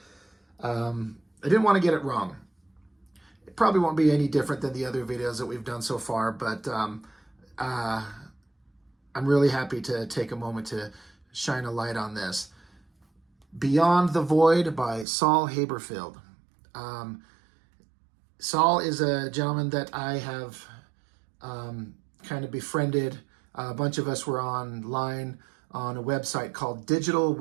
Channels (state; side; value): drops out; left; at 15.1 s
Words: I didn't want to get it wrong. It probably won't be any different than the other videos that we've done so far, but I'm really happy to take a moment to shine a light on this. Beyond the Void by Saul Haberfield. Saul is a gentleman that I have kind of befriended. A bunch of us were online on a website called